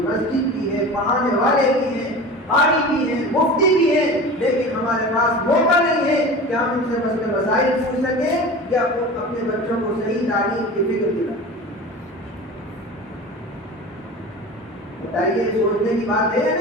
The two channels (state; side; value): normal; both; correlation 0.34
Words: مسجد بھی ہے, پڑھانے والے بھی ہیں, قاری بھی ہیں, مفتی بھی ہیں, لیکن ہمارے پاس موقع نہیں ہے کہ ہم ان سے مسئلے مسائل پوچھ سکیں یا اپنے بچوں کو صحیح تعلیم کی فکر دلائیں. بتائیے, سوچنے کی بات ہے یا